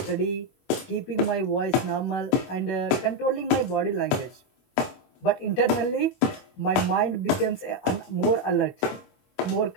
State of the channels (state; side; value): late; right; 21 ms